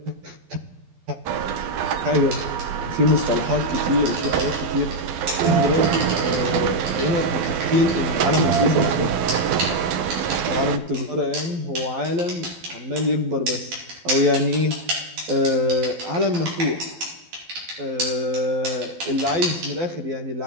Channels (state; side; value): late; left; 12 ms